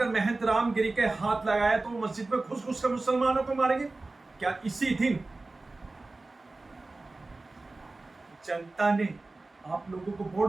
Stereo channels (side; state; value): left; quieter; 3.2 dB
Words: महंत रामगिरी के हाथ लगाया तो मस्जिद में घुस घुस कर मुसलमानों को मारेंगे। क्या इसी दिन जनता ने आप लोगों को